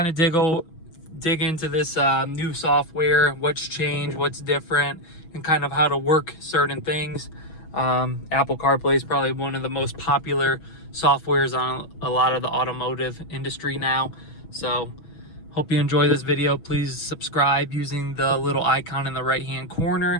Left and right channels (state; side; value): late; right; 6.2 ms